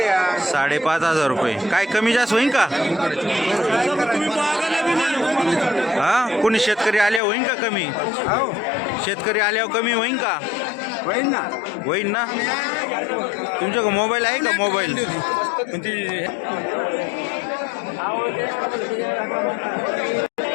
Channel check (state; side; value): drops out; right; at 7.2 s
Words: 5,500 रुपये. काय कमी जास्त होईन का? हा, कोणी शेतकरी आल्यावर होईन का कमी? शेतकरी आल्यावर कमी होईन का? होईन ना. तुमच्याकडे मोबाईल आहे का? मोबाईल